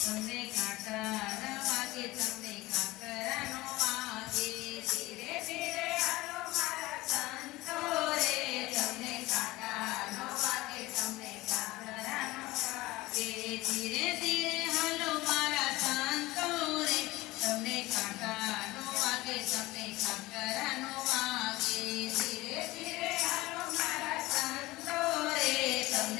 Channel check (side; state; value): right; quieter; 19.6 dB